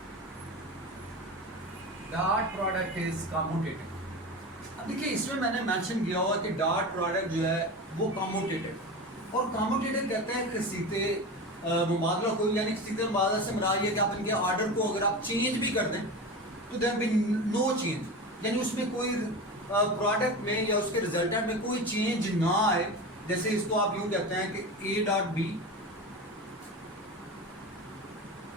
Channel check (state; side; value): normal; both; correlation 0.27